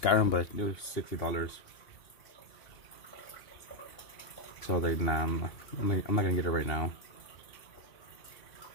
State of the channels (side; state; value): right; late; 2.8 ms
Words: but it was $60. So I was like, nah, I'm not gonna get it right now.